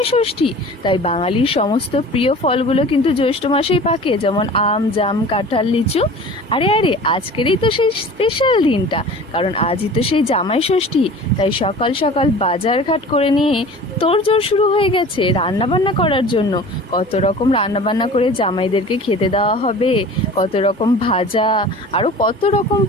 ষষ্ঠী। তাই বাঙালির সমস্ত প্রিয় ফলগুলো কিন্তু জ্যৈষ্ঠ মাসেই পাকে, যেমন আম, জাম, কাঁঠাল, লিচু। আরে আরে, আজকেরই তো সেই স্পেশাল দিনটা, কারণ আজই তো সেই জামাই ষষ্ঠী। তাই সকাল সকাল বাজার ঘাট করে নিয়ে তোড়জোড় শুরু হয়ে গেছে রান্না বান্না করার জন্য। কত রকম রান্না বান্না করে জামাইদেরকে খেতে দেওয়া হবে, কত রকম ভাজা, আরও কত রকম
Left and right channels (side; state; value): both; normal; correlation 0.41